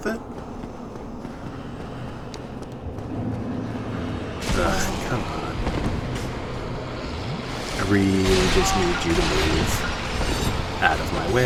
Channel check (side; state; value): both; identical; correlation 1.00